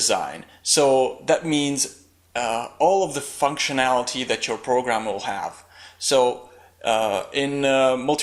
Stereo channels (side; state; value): both; identical; correlation 1.00